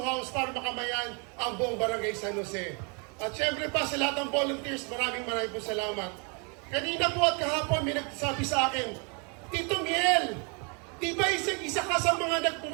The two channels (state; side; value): quieter; left; 35.0 dB